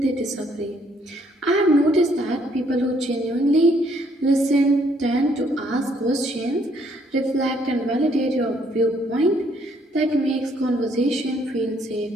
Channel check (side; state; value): both; normal; correlation 0.67